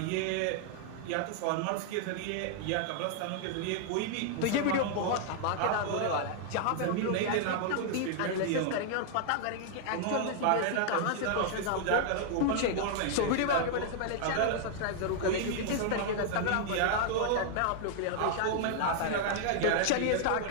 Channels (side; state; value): both; different; correlation -0.01